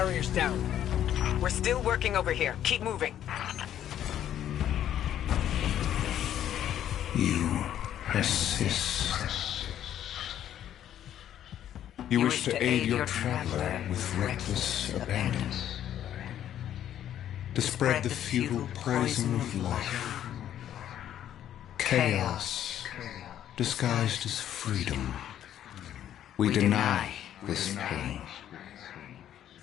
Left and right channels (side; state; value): right; quieter; 10.9 dB